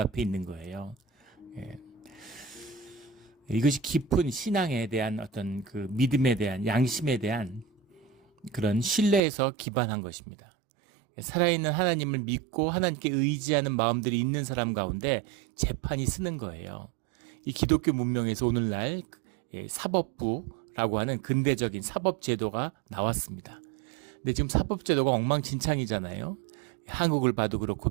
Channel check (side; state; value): left; drops out; at 9.2 s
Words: 있는 거예요. 이것이 깊은 신앙에 대한 어떤 그 믿음에 대한 양심에 대한 그런 신뢰에서 기반한 것입니다. 살아있는 하나님을 믿고 하나님께 의지하는 마음들이 있는 사람 가운데 재판이 쓰는 거예요. 이 기독교 문명에서 오늘날 사법부라고 하는 근대적인 사법제도가 나왔습니다. 근데 지금 사법제도가 엉망진창이잖아요. 한국을 봐도 그렇고